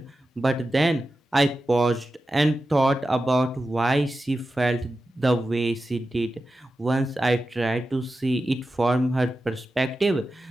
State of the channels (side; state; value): both; normal; correlation 0.92